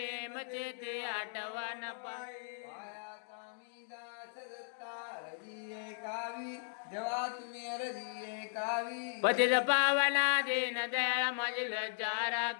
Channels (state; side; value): silent; right; digital silence